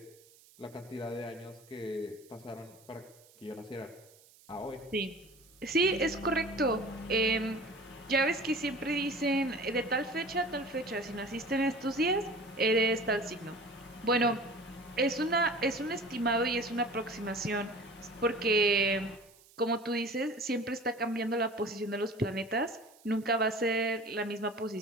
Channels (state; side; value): noise; right; hiss, 26 dB below the sound